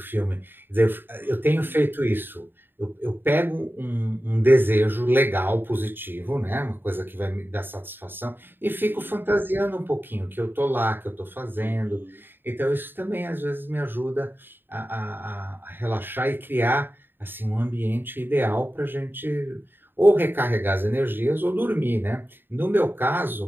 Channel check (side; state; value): left; late; 0.097 ms